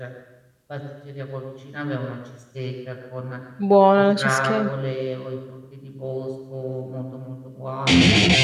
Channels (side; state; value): both; identical; correlation 1.00